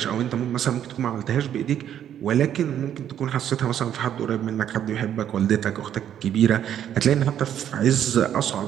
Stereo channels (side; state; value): left; quieter; 10.1 dB